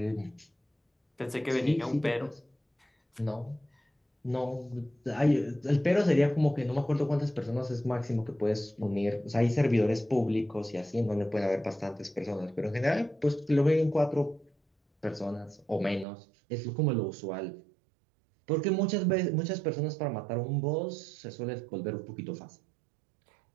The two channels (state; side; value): drops out; left; at 16.1 s